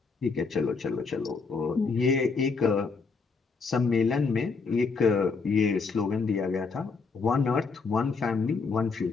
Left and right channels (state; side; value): quieter; right; 4.7 dB